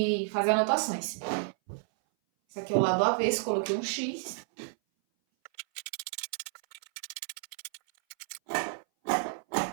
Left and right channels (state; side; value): silent; left; 57 dB below the other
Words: faz anotações. Esse aqui é o lado avesso, coloquei um X.